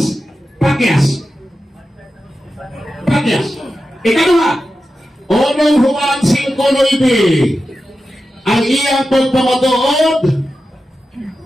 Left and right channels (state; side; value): normal; both; correlation 0.92